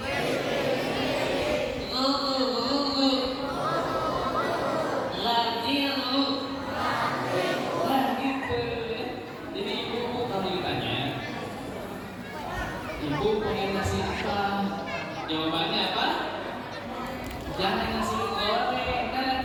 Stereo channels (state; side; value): identical; both; correlation 1.00